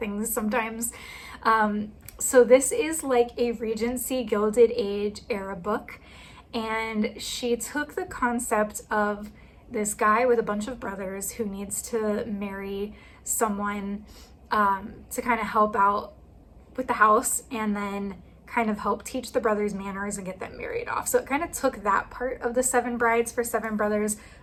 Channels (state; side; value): identical; both; correlation 1.00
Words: sometimes. So this is like a Regency Gilded Age era book. And she took the concept of this guy with a bunch of brothers who needs to marry someone to kind of help out with the house, and then kind of help teach the brothers manners and get them married off. So it kind of took that part of the 7 Brides for 7 Brothers,